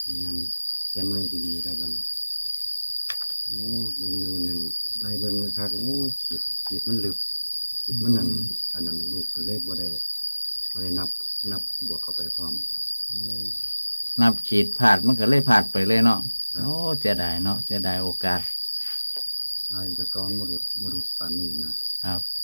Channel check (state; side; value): inverted; both; correlation -1.00